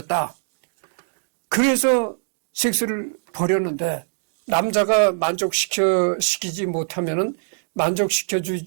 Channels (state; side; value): silent; left; digital silence